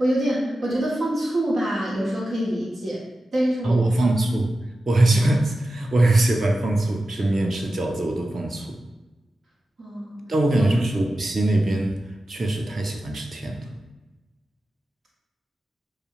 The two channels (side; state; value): both; normal; correlation 0.93